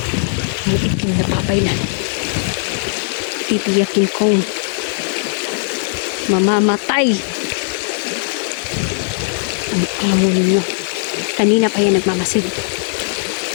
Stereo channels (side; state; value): right; silent; digital silence